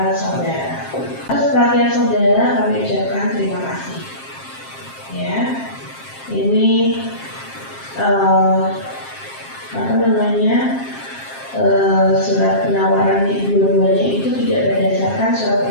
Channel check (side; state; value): right; late; 7.5 ms